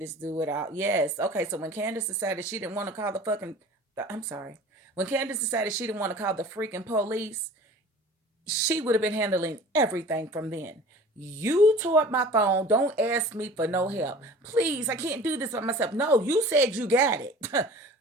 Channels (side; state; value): both; normal; correlation 0.43